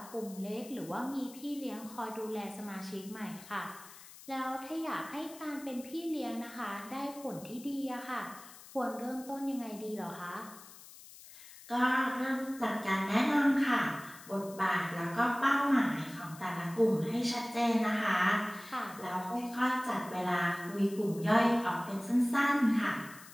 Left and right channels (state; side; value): noise; left; hiss, 18 dB below the sound